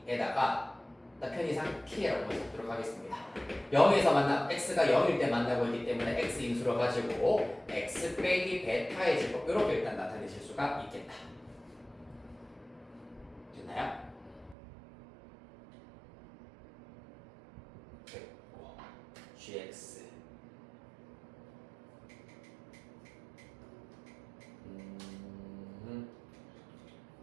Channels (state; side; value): drops out; left; at 14.6 s